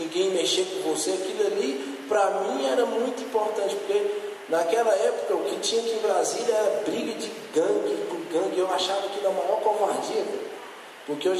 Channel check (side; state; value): both; identical; correlation 1.00